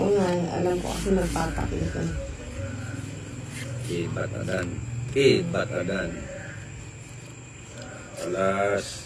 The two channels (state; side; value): identical; both; correlation 1.00